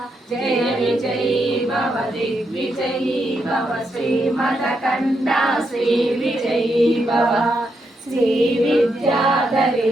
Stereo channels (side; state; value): both; normal; correlation 0.81